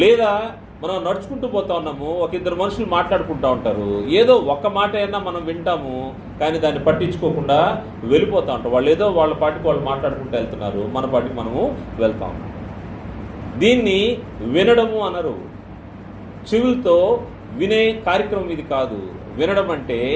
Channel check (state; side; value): identical; both; correlation 1.00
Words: లేదా మనం నడుచుకుంటూ పోతా ఉన్నాము, ఒక ఇద్దరు మనుషులు మాట్లాడుకుంటూ ఉంటారు, ఏదో ఒక్క మాట అయినా మనం వింటాము, కానీ దాన్ని పట్టించుకోకుండా వెళ్ళిపోతూ ఉంటాం. వాళ్ళు ఏదో వాళ్ళ పాటికి వాళ్ళు మాట్లాడుకుంటూ వెళ్తున్నారు, మన పాటికి మనము వెళ్తాం. దీన్ని వినడము అనరు. చెవులతో వినే కార్యక్రమం ఇది కాదు. వినడం అంటే